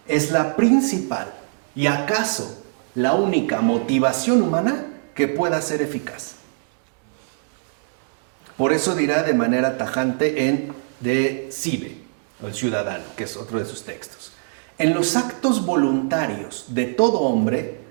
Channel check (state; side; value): silent; left; digital silence